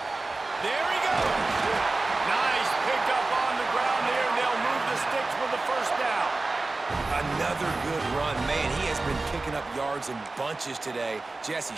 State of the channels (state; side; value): quieter; left; 3.3 dB